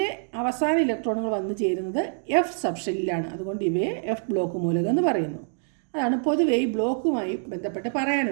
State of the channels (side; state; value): left; silent; digital silence